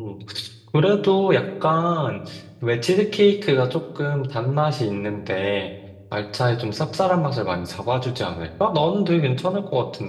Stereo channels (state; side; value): identical; both; correlation 1.00